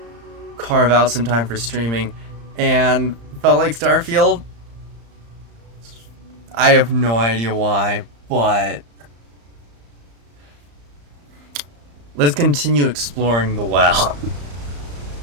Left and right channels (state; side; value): late; left; 35 ms